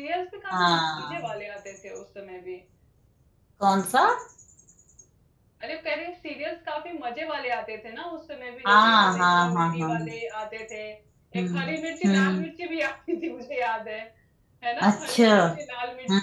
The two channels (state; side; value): identical; both; correlation 1.00